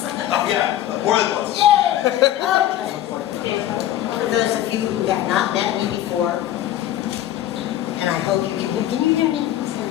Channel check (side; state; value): right; quieter; 12.7 dB